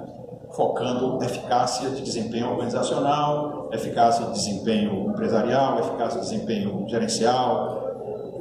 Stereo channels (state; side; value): identical; both; correlation 1.00